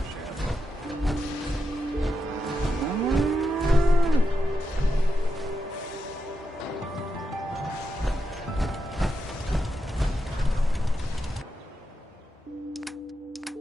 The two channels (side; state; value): both; normal; correlation 0.86